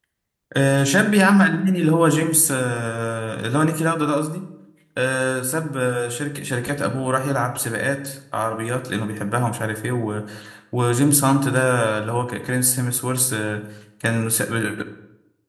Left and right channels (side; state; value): both; identical; correlation 1.00